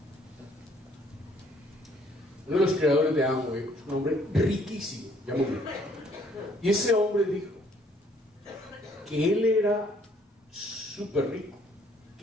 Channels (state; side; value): normal; both; correlation 0.63